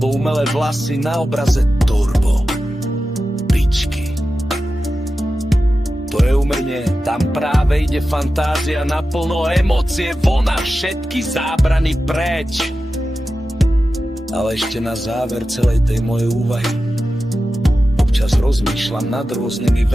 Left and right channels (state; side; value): normal; both; correlation 0.93